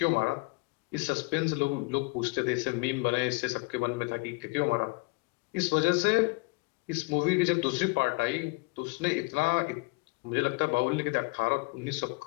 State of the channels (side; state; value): right; quieter; 27.7 dB